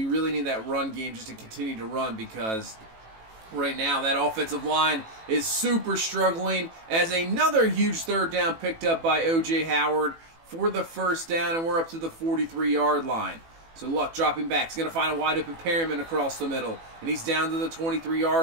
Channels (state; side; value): late; left; 18 ms